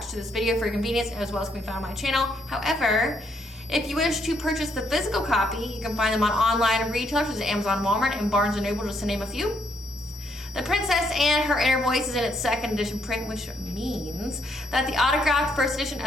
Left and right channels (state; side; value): normal; both; correlation 0.73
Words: to this video for your convenience as well as can be found on my channel. However, if you wish to purchase the physical copy, you can find them on online retailers such as Amazon, Walmart, and Barnes & Noble, just to name a few. The Princess and Her Inner Voice is in its second edition print, which means that the autographed first edition